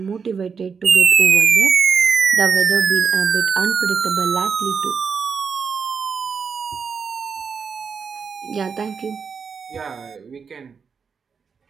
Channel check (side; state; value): left; quieter; 5.9 dB